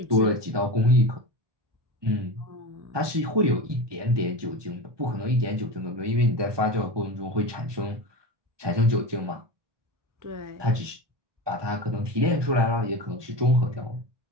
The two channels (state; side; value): late; left; 1.2 ms